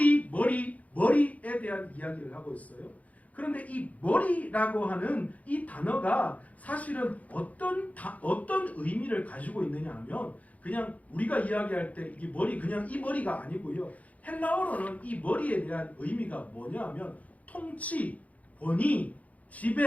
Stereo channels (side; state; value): right; late; 0.071 ms